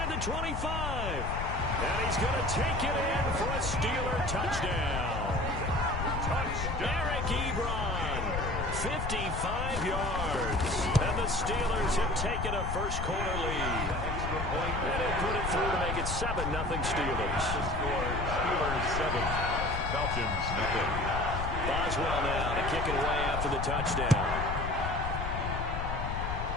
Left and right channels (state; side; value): noise; left; rumble, 3 dB below the sound